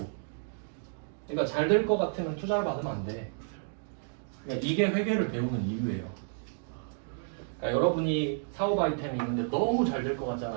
그러니까 잘 될 것 같으면 투자를 받으면 안 돼. 그러니까 이게 회계를 배우는 이유예요. 그러니까 여러분이 사업 아이템이 있는데 너무 잘 될 것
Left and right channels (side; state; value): left; silent; digital silence